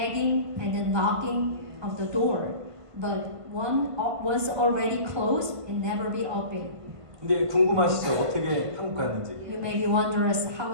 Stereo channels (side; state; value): left; late; 1.5 ms